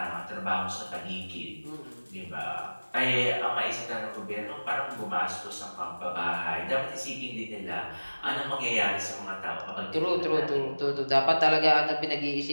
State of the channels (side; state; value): both; inverted; correlation -1.00